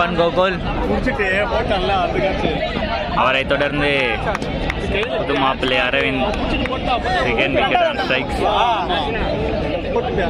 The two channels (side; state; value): both; identical; correlation 1.00